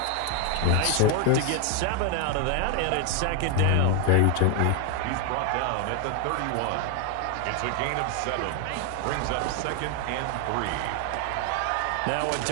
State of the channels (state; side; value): different; both; correlation 0.01